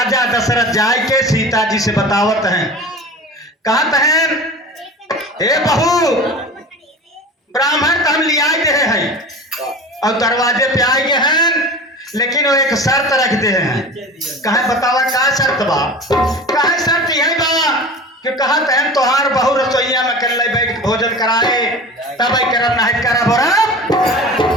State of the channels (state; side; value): normal; both; correlation 0.35